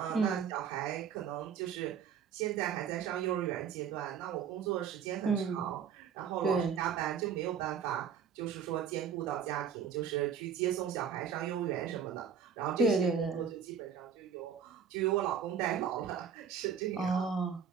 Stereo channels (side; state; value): left; quieter; 7.4 dB